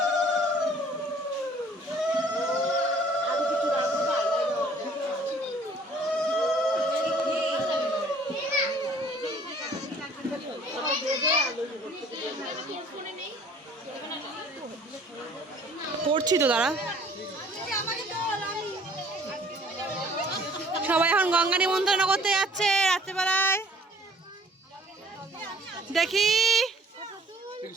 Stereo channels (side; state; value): both; normal; correlation 0.55